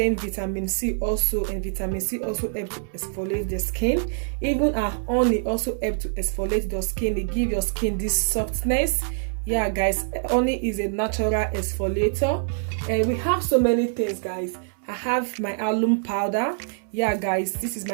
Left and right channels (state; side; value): silent; left; 61 dB below the other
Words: vitamin C also, and vitamin C also helps to exfoliate the skin. Even our honey also helps to exfoliate your skin. It gives your skin this softness. Yeah guys, honey is a natural exfoliator. And we have so many things guys. I have my alum powder. Yeah guys, this is